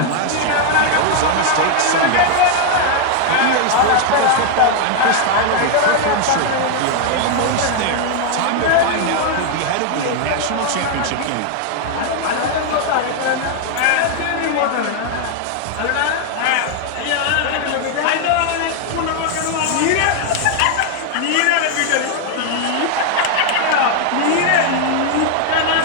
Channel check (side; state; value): both; different; correlation 0.00